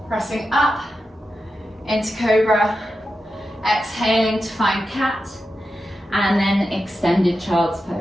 pressing up into cobra, exhaling to find cat, and then extended child's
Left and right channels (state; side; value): normal; both; correlation 0.90